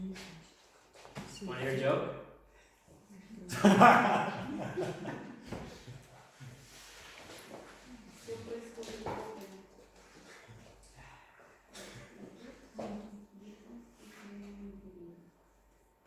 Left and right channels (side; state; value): both; identical; correlation 1.00